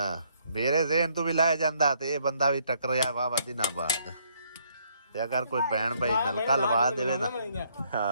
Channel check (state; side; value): inverted; both; correlation -0.68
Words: ਮੇਰੇ ਜ਼ਹਿਨ ਤੋਂ ਵੀ ਲਾਇਆ ਜਾਂਦਾ ਤੇ ਇਹ ਬੰਦਾ ਵੀ ਟਕਰਿਆ ਵਾਹ ਦਿਨਾਂ ਬਾਅਦ। ਤੇ ਅਗਰ ਕੋਈ ਭੈਣ ਭਾਈ ਨਲਕਾ ਲਵਾ ਦੇਵੇ ਨਾ,